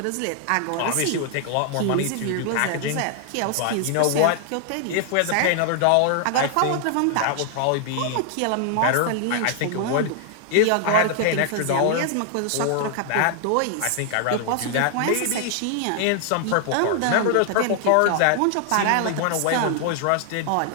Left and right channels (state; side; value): different; both; correlation 0.00